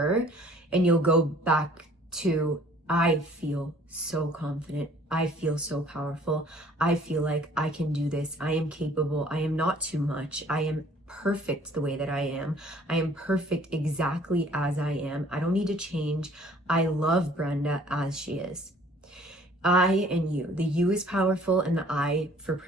and you'll go back to, I feel so confident. I feel so powerful. I feel like I can do this. I am capable. I am not too much. I am perfect the way that I am. I am perfect exactly as I am. I don't need to change. I love Brenda as she is. I and you. The you is powerful, and the I for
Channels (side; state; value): both; normal; correlation 0.55